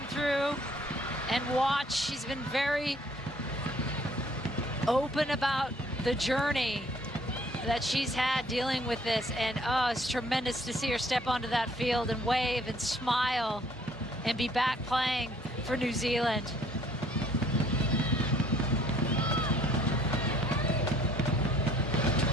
through and watch, she's been very open about the journey that she's had dealing with this. And it's tremendous to see her step onto that field and wave and smile and be back playing for New Zealand.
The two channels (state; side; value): normal; both; correlation 0.60